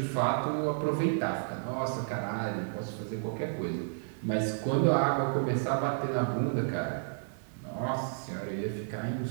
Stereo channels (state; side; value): silent; left; digital silence